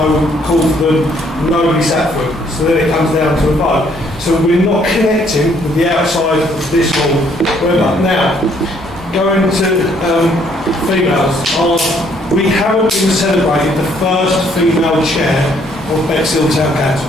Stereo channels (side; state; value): both; normal; correlation 0.66